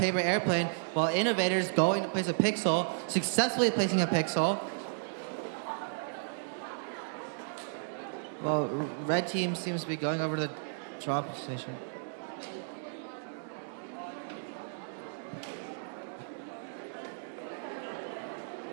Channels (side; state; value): left; silent; digital silence